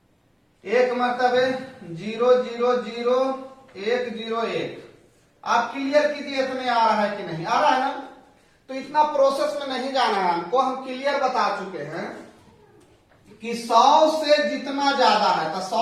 1 मतलब 0 0 0 1 0 1। आप क्लियर कीजिए इतने आ रहा है कि नहीं आ रहा है ना। तो इतना प्रोसेस में नहीं जाना है हमको, हम क्लियर बता चुके हैं कि 100 से जितना ज्यादा है तो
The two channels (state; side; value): identical; both; correlation 1.00